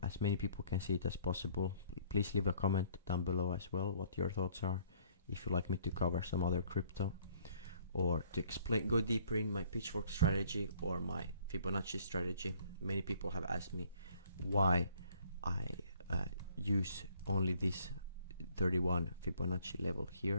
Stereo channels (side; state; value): both; inverted; correlation -0.59